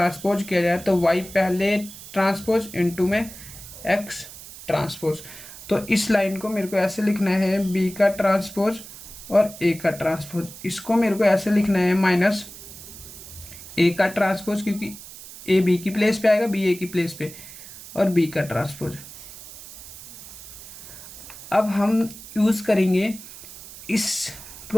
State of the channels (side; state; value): right; noise; hiss, 15 dB below the sound